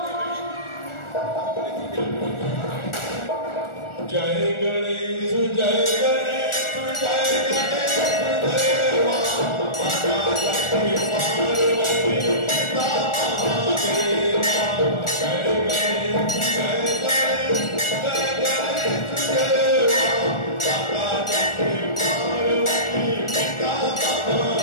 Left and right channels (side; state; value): right; late; 1.4 ms